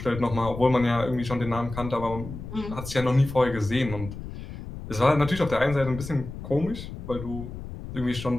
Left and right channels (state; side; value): noise; left; rumble, 10 dB below the sound